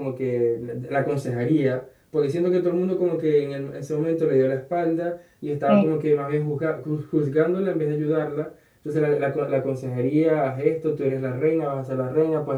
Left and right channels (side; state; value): both; identical; correlation 1.00